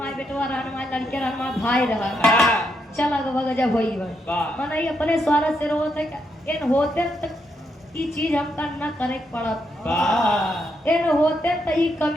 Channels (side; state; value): both; normal; correlation 0.80